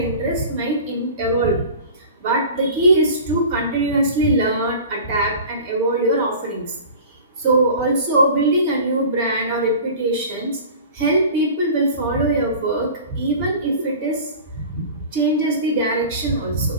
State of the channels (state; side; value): inverted; both; correlation -0.39